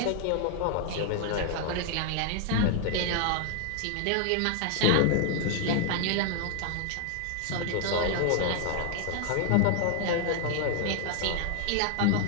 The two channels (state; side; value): different; both; correlation 0.00